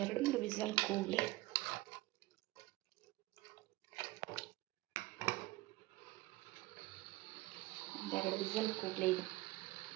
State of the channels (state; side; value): quieter; left; 19.5 dB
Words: 2-3 ವಿಸಲ್ ಕೂಗಲಿ. ಒಂದೆರಡು ವಿಸಲ್ ಕೂಗಲಿ. ಇದು